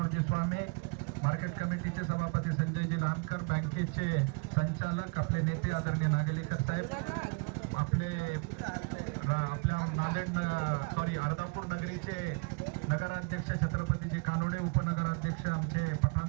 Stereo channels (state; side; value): quieter; left; 32.8 dB